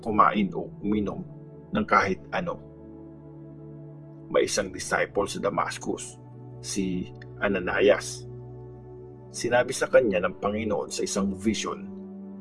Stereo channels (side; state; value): both; identical; correlation 1.00